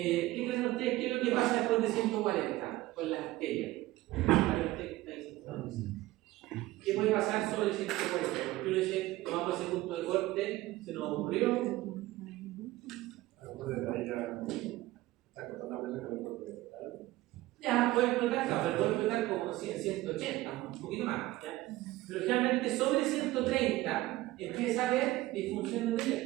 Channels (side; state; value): left; quieter; 17.7 dB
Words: creen ustedes? ¿Qué es lo que pasa después de 140 con las arterias? ¿Qué puede pasar sobre el 140? Porque uno dice, tomamos ese punto de corte, se nos ocurrió. Ya, puede explotar, no, pero puede explotar como 180, un poquito más. ¿Ya? Pero generalmente sobre 130 empieza a haber disfunción